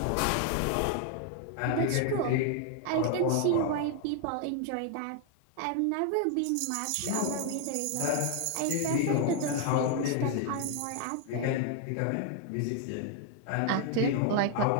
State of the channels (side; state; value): both; different; correlation 0.00